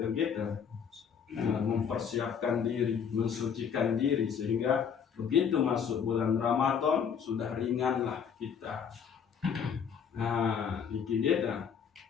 Mempersiapkan diri, mensucikan diri sehingga begitu masuk bulan Ramadan sudah ringanlah kita. Nah, niki dia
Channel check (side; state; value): right; quieter; 7.2 dB